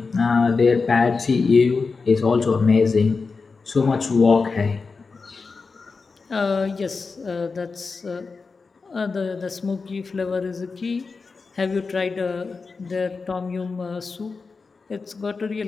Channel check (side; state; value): right; quieter; 4.5 dB